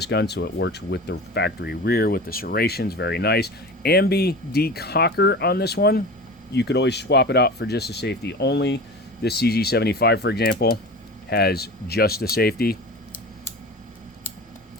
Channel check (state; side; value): normal; both; correlation 0.34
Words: gun, so it works with the factory rear with the serrations. Very nice. Ambi decocker on this one. You could always swap it out for just a safety only. This CZ75, for example, has just a safety,